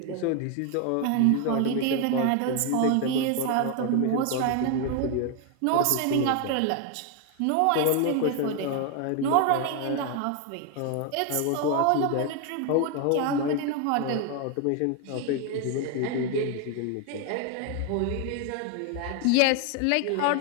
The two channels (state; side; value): different; both; correlation 0.01